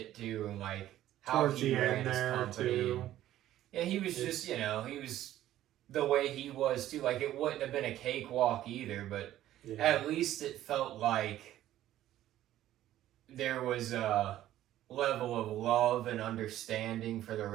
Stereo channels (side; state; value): left; quieter; 13.3 dB